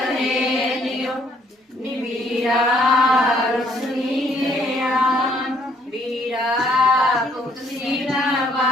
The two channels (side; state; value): both; normal; correlation 0.66